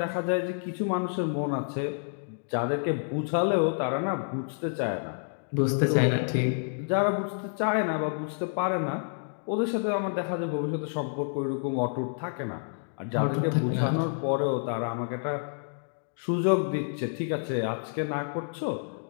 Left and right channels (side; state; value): right; silent; digital silence